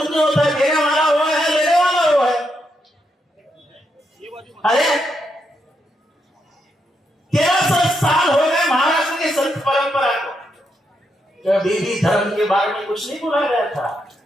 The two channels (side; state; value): both; normal; correlation 0.81